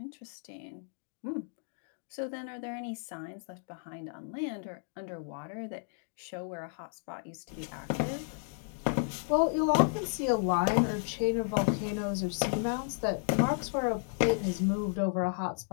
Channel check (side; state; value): right; silent; 56 dB below the other